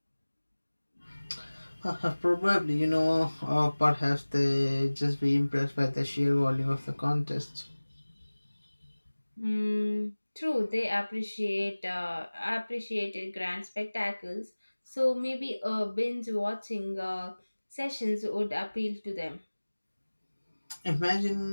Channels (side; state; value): both; inverted; correlation -1.00